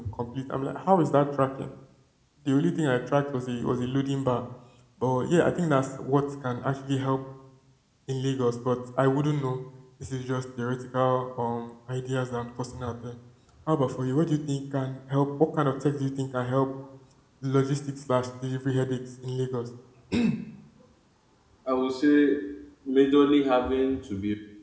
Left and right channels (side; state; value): both; identical; correlation 1.00